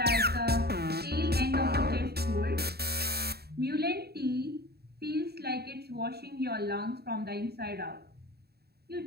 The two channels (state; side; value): late; left; 0.46 ms